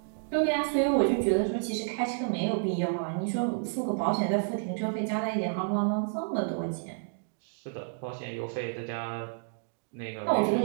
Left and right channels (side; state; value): left; silent; digital silence